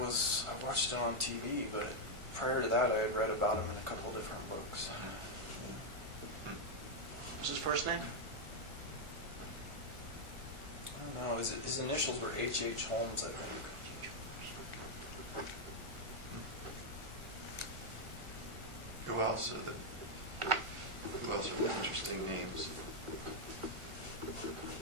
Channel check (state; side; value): late; left; 1.4 ms